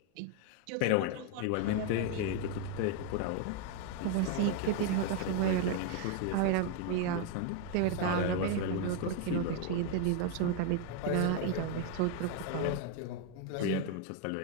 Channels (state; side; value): different; both; correlation 0.01